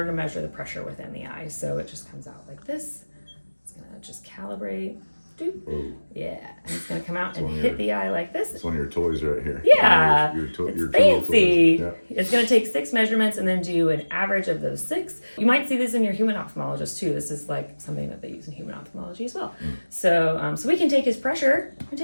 to measure the pressure within the eye. So it just comes out like this. It's gonna just calibrate. Doop. Oh, Yeah, and it's gonna come out and one of hit your- the eye like this. it's one of your toys right here. Yeah, Your it's tool fancy. toys. It's going to take 6 measurements and then do an average of those 6. You might see this in your human ophthalmologist too. This is like something that they use in human ophthalmology as well. So we can take his pressure. We can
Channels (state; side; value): inverted; both; correlation -1.00